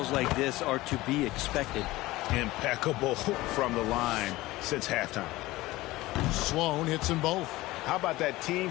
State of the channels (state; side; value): quieter; right; 18.6 dB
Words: like this are to be expected. Impeccable from the line since halftime. Sloan hits them both. How about that